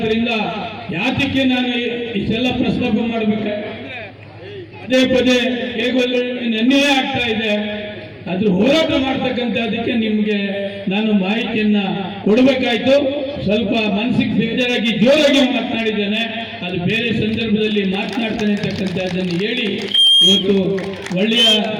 ಯಾತಕ್ಕೆ ನಾನು ಇಷ್ಟೆಲ್ಲ ಪ್ರಸ್ತಾಪ ಮಾಡ್ಬೇಕಾದ್ರೆ ಪದೇ ಪದೇ ಹೇಗೋಲ್ಲ ನನ್ನೇ ಆಗ್ತಾ ಇದೆ. ಅದ್ರ ಹೋರಾಟ ಮಾಡ್ತಕ್ಕಂಥದಕ್ಕೆ ನಿಮ್ಗೆ ನಾನು ಮಾಹಿತಿಯನ್ನ ಕೊಡಬೇಕಾಯ್ತು. ಸ್ವಲ್ಪ ಮನಸ್ಸಿಗೆ ಬೇಜಾರಾಗಿ ಜೋರಾಗಿ ಮಾತನಾಡಿದ್ದೇನೆ, ಅದು ಬೇರೆ ಸಂದರ್ಭದಲ್ಲಿ ಮಾತನಾಡ್ತಾನೆ ಅಂತಕ್ಕಂಥದ್ದನ್ನು ಹೇಳಿ ಇವತ್ತು ಒಳ್ಳೆಯ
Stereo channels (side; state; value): both; identical; correlation 1.00